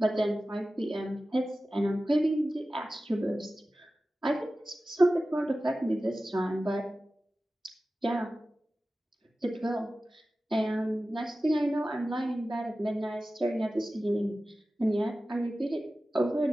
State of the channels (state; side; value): normal; both; correlation 0.95